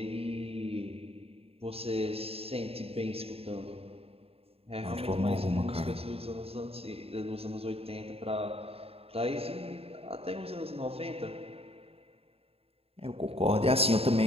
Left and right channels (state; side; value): late; left; 0.28 ms